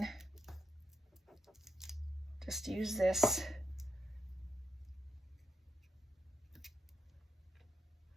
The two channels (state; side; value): normal; both; correlation 0.83